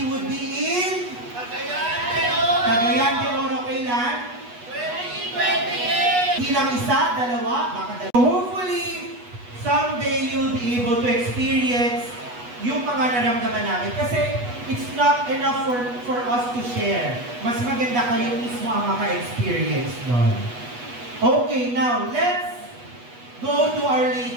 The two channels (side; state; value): left; late; 8.2 ms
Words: would be in Cagayan de Oro. Kailan? 2028! Hindi lang isa, dalawa, baka dalawa. So hopefully, someday you'll be able to experience yung mga naramdaman namin. Kasi it's not enough for us to share. Mas maganda kayo mismo ang maka-experience doon. Okay, now let's go to Our